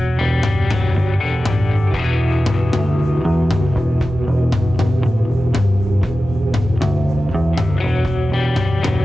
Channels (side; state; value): both; normal; correlation 0.94